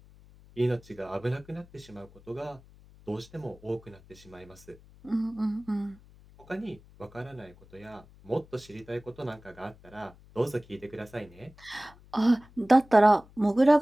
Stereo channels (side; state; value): left; noise; hum, 24 dB below the sound